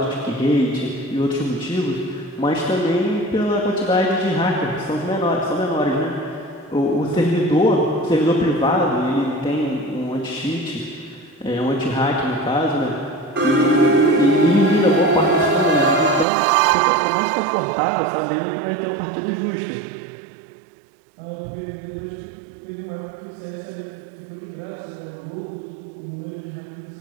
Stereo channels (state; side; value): drops out; left; at 16.2 s